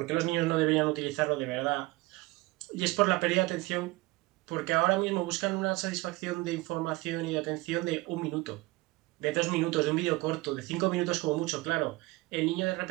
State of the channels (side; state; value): left; quieter; 21.6 dB